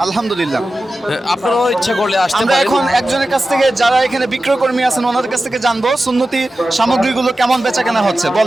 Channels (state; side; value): normal; both; correlation 0.94